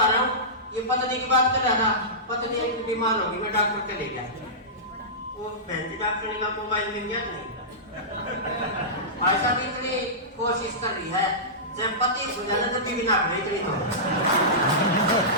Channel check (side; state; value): both; normal; correlation -0.18